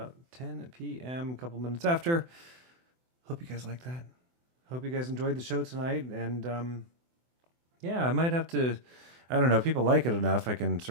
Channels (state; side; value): late; left; 24 ms